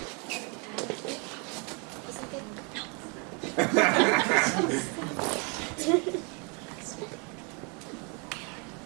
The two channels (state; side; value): quieter; left; 33.5 dB